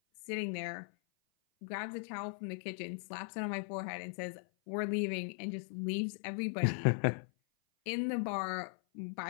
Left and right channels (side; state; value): right; silent; 52 dB below the other